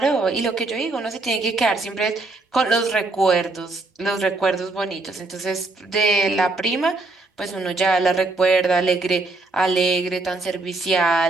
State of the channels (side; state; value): left; quieter; 3.2 dB